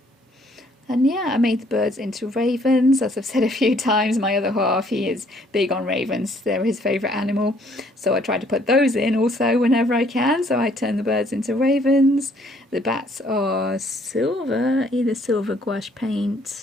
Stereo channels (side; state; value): both; normal; correlation 0.63